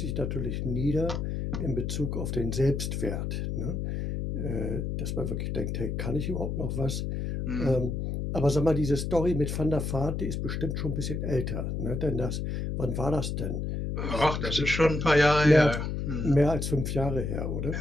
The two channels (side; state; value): left; noise; hum, 2 dB below the sound